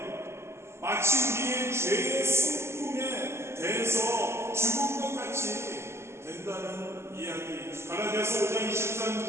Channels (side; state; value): left; late; 0.13 ms